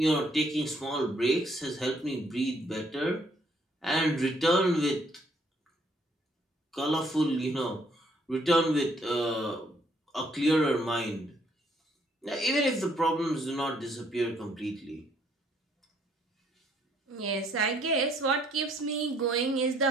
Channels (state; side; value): normal; both; correlation 0.67